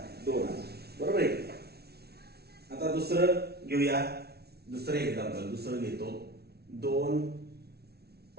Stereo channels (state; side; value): late; left; 0.46 ms